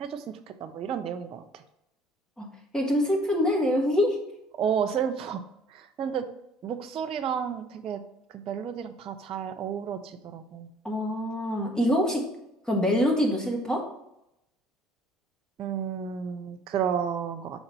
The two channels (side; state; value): both; normal; correlation 0.56